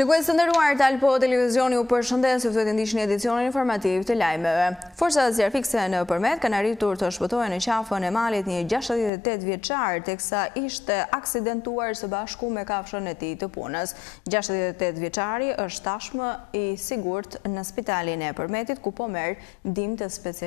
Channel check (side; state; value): right; drops out; at 9.1 s